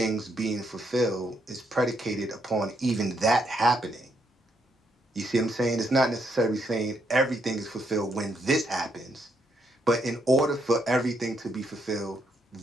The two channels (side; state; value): both; normal; correlation 0.76